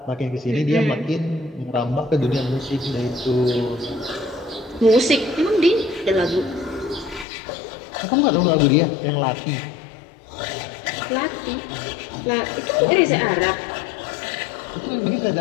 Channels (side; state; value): right; drops out; at 7.2 s